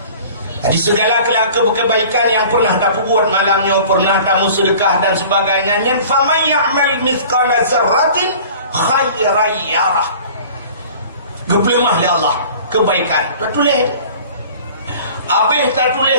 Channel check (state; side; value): inverted; both; correlation -0.45